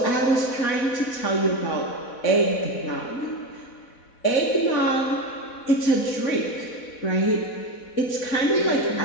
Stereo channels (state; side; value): late; right; 4.1 ms